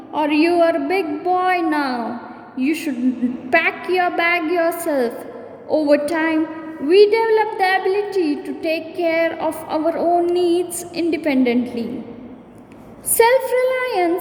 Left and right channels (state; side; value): identical; both; correlation 1.00